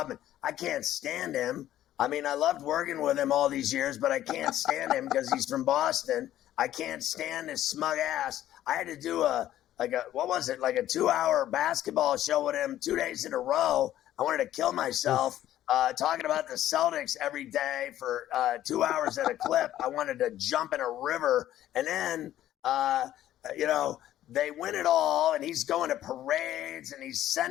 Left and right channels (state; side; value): quieter; right; 12.8 dB